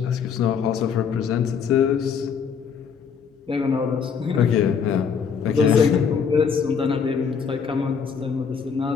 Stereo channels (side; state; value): right; quieter; 6.5 dB